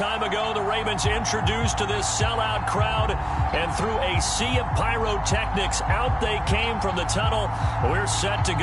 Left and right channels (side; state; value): both; identical; correlation 1.00